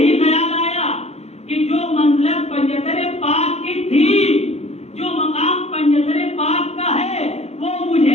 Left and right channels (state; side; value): late; right; 0.31 ms